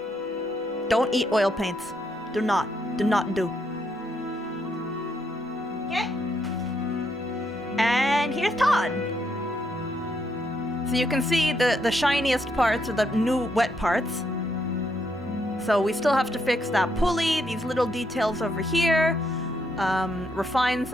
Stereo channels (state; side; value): normal; both; correlation 0.76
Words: Don't eat oil paints. Do not do. Okay. And here's Todd. So you can see the shiniest parts are the new wet parts. So we still have to fix that pulley, these little details over here, refine